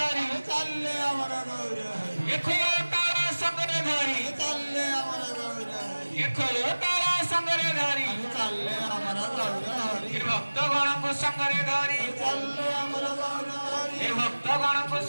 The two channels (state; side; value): inverted; both; correlation -1.00